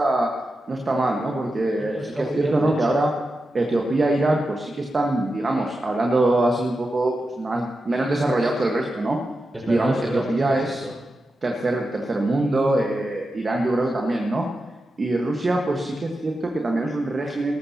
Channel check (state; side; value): normal; both; correlation 0.90